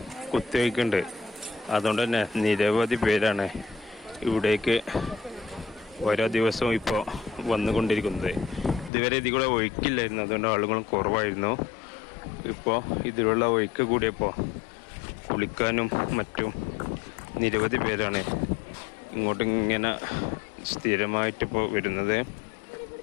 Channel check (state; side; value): drops out; right; at 8.9 s